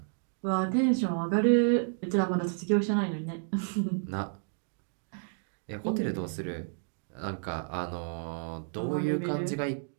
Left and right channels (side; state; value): left; silent; digital silence